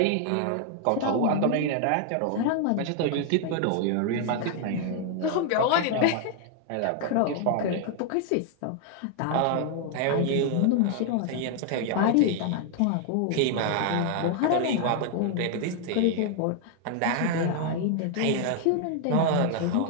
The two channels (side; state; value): both; different; correlation 0.00